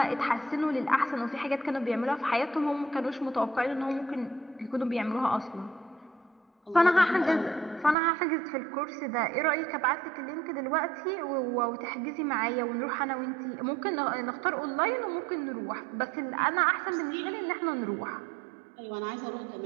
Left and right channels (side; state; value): left; drops out; at 8.0 s